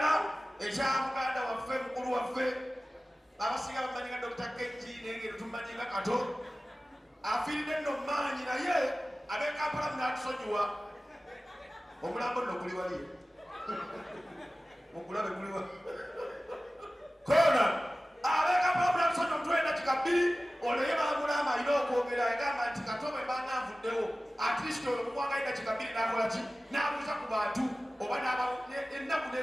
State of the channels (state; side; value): normal; both; correlation 0.97